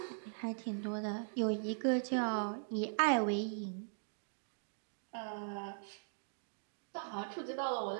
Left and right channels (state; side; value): silent; left; digital silence